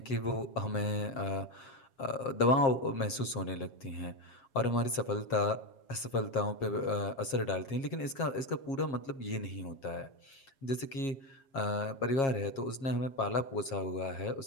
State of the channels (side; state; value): right; late; 7.4 ms